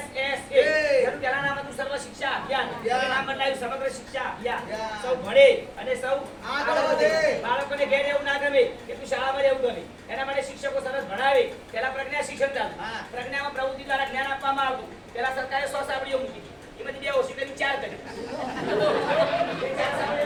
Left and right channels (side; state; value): both; identical; correlation 1.00